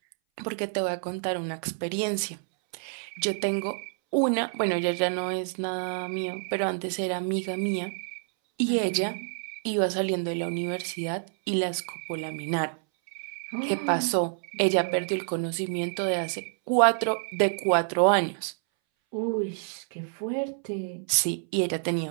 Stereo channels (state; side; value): silent; left; 59 dB below the other